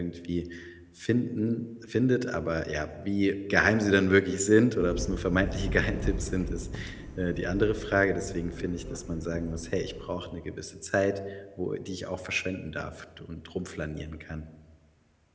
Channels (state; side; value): identical; both; correlation 1.00